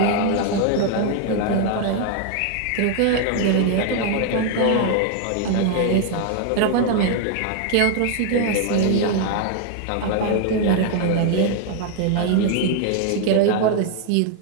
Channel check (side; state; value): both; different; correlation 0.00